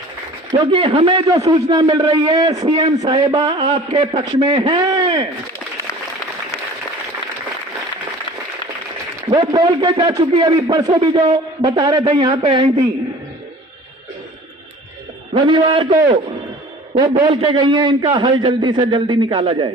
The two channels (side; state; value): both; normal; correlation 0.45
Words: क्योंकि हमें जो सूचना मिल रही है सीएम साहिबा आपके पक्ष में है। वो बोल के जा चुकी, अभी परसों भी जो बता रहे थे यहां पे आई थी, रविवार को वो बोल के गई है इनका हल जल्दी से जल्दी निकाला जाए,